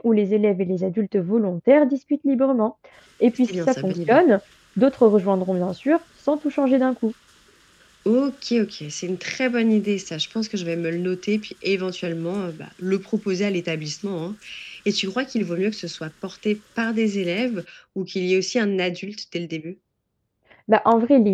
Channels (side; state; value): both; identical; correlation 1.00